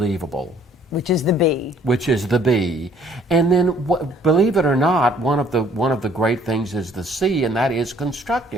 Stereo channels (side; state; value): both; normal; correlation 0.60